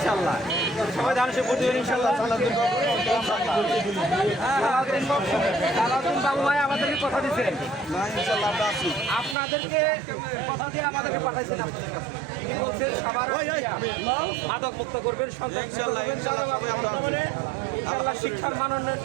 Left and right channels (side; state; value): left; drops out; at 9.3 s